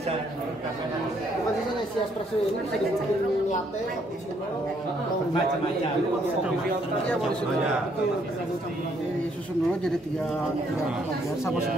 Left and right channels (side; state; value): both; normal; correlation 0.69